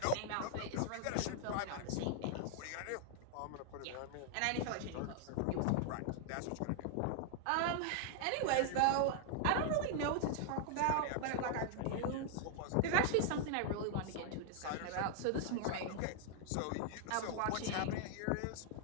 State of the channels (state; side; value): different; both; correlation 0.00